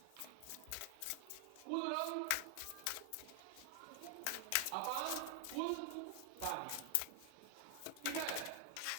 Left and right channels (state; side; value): different; both; correlation 0.00